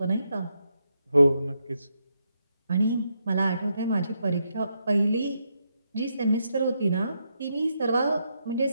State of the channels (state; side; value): inverted; both; correlation -0.81